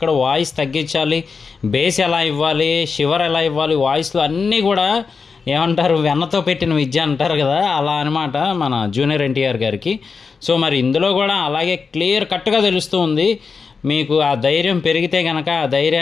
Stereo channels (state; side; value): quieter; right; 5.1 dB